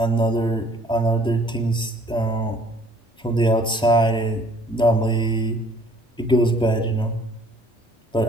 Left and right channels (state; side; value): normal; both; correlation 0.57